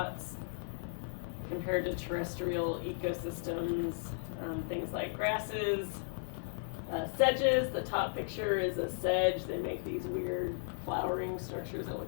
compared to terrestrial ecosystems. Things like grasses, sedges. The top picture is a sedge. They make these weird flowering structures that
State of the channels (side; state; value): right; silent; digital silence